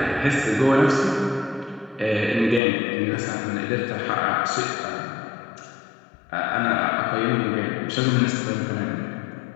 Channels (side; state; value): right; drops out; at 2.6 s